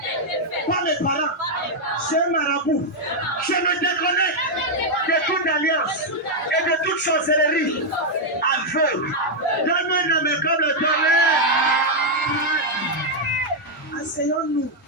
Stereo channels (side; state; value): both; normal; correlation -0.02